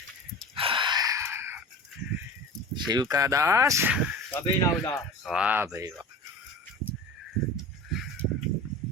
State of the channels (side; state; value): both; normal; correlation 0.34